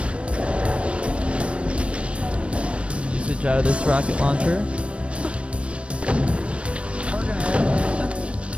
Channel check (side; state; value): left; late; 0.060 ms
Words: Usage out of this rocket launcher. We're gonna hit.